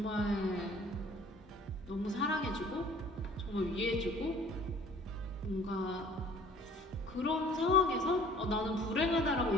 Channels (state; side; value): normal; both; correlation 0.51